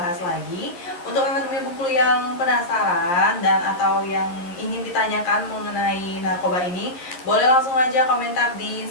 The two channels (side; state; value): right; late; 11 ms